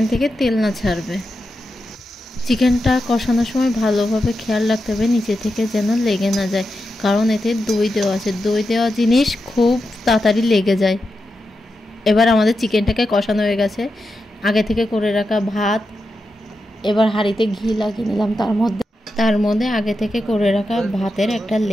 থেকে তেল না ছাড়বে। চিকেনটা কষানোর সময় ভালোভাবে খেয়াল রাখতে হবে নিচে থেকে যেন লেগে না যায়, কারণ এতে দই দেওয়া আছে। দই দেওয়া জিনিস খুব তাড়াতাড়ি লেগে যায়। এবার আমাদের চিকেনটাকে কষানো হয়ে গেছে। আগে থেকে করে রাখা ভাত, এবার হাঁড়িতে ঘি লাগিয়ে নিলাম। তার মধ্যে আগে থেকে করে রাখা ভাতের একটা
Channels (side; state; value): both; normal; correlation 0.88